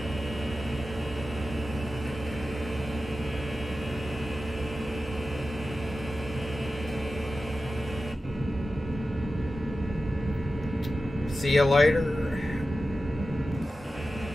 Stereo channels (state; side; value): normal; both; correlation 0.93